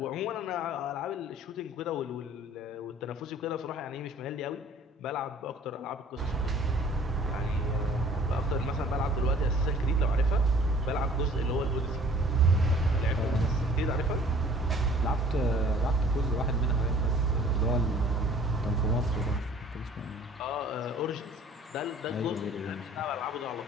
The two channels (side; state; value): both; normal; correlation 0.52